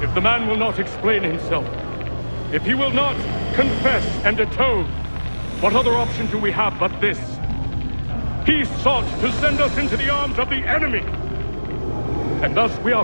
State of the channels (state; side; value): inverted; both; correlation -1.00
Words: If the man will not explain himself, if he will not confess and atone, what other option do we have but this? He sought to send us into the arms of the enemy. And thus we are